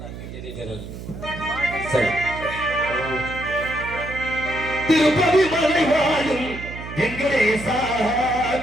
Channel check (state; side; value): noise; right; hum, 11 dB below the sound